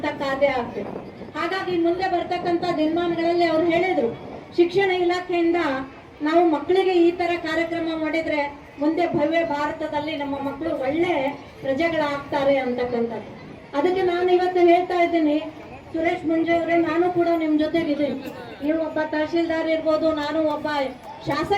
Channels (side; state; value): both; identical; correlation 1.00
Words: ಕಾರ್ಯ ಆಗ್ಬೇಕು. ಹಾಗಾಗಿ ಮುಂದೆ ಬರ್ತಕ್ಕಂಥ ದಿನಮಾನಗಳಲ್ಲಿ ಅವ್ರು ಹೇಳಿದ್ರು, ಶಿಕ್ಷಣ ಇಲಾಖೆಯಿಂದ ನಾವು ಮಕ್ಕಳಿಗೆ ಈ ತರ ಕಾರ್ಯಕ್ರಮ ಮಾಡಿದ್ರೆ ಮುಂದೆ ಭವ್ಯ ಭಾರತದಲ್ಲಿ ನಮ್ಮ ಮಕ್ಕಳು ಒಳ್ಳೆ ಪ್ರಜೆಗಳಾಗ್ತಾರೆ ಅಂತಕ್ಕಂಥದ್ದು. ಅದಕ್ಕೆ ನಾನು ಇವತ್ತು ಹೇಳ್ತಾ ಇದ್ದೀನಿ, ಸುರೇಶ್ ಮುಂಜೆ ಅವರೇ, ನಾನು ಕೂಡ ನಿಮ್ ಜೊತೆಗಿದ್ದೀನಿ. ನೀವು ಒಬ್ಬ ತಹಶೀಲ್ದಾರ್ ಇರ್ಬೋದು, ನಾನು ಒಬ್ಬ